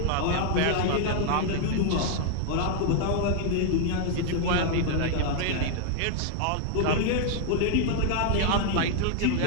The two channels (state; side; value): different; both; correlation 0.00